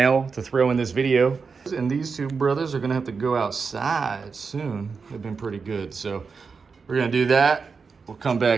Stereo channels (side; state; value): left; quieter; 5.1 dB